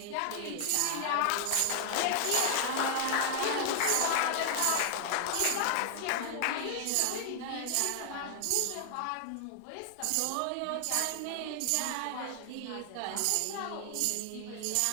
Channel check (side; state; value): both; different; correlation 0.00